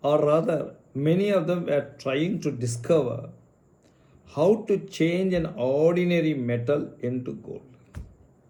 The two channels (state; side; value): identical; both; correlation 1.00